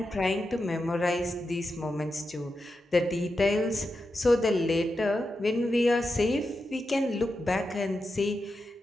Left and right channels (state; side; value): normal; both; correlation 0.89